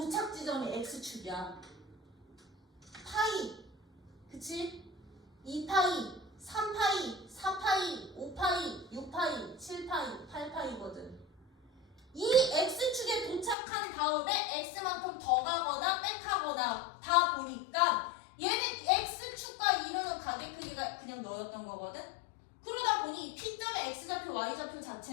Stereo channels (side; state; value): right; drops out; at 13.6 s